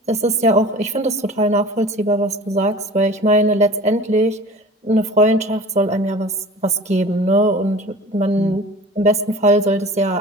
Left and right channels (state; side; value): normal; both; correlation 0.40